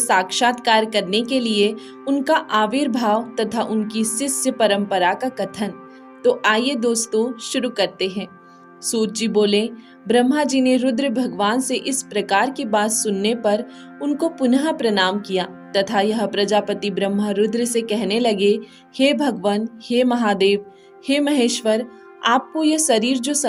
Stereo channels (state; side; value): identical; both; correlation 1.00